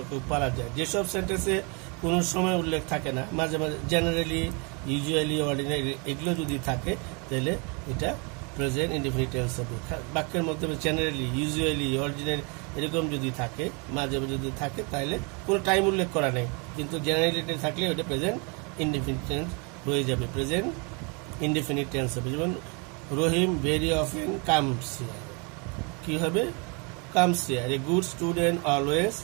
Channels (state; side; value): quieter; left; 32.8 dB